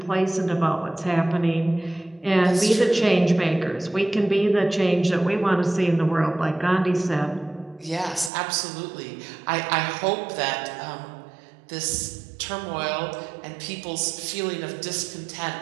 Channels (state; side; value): drops out; left; at 8.3 s